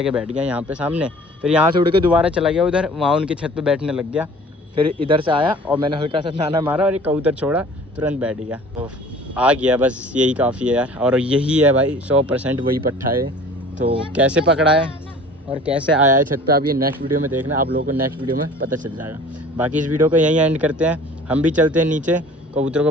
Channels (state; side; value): normal; both; correlation 0.46